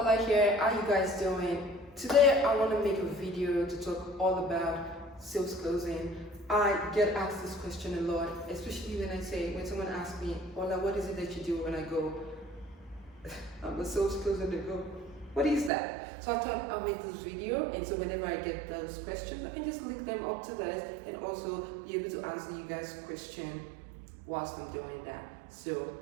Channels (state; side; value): drops out; left; at 15.7 s